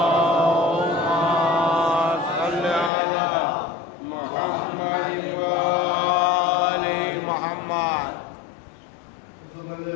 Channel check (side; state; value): right; drops out; at 2.9 s